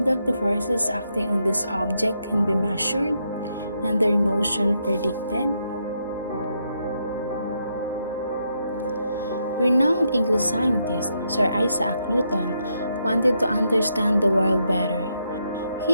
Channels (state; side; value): inverted; both; correlation -0.79